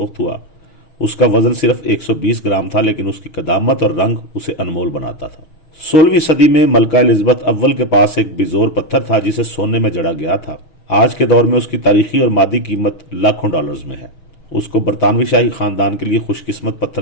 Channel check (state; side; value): late; right; 6.4 ms